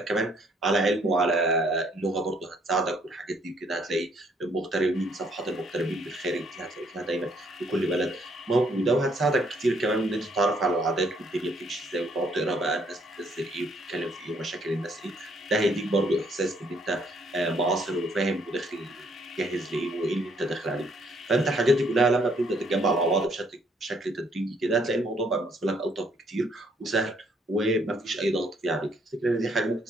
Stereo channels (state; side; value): normal; both; correlation 0.67